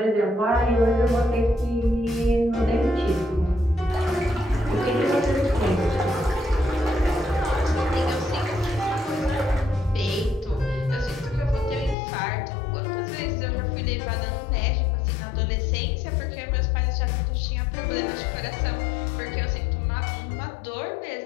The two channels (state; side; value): drops out; right; at 12.0 s